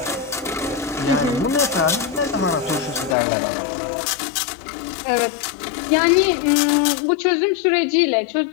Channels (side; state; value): right; drops out; at 3.2 s